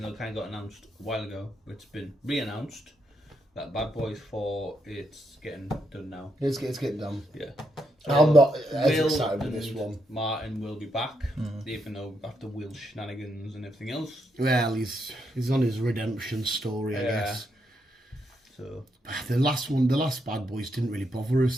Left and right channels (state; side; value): normal; both; correlation 0.80